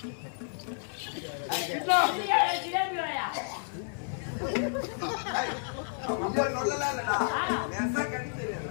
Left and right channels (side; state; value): right; silent; 57 dB below the other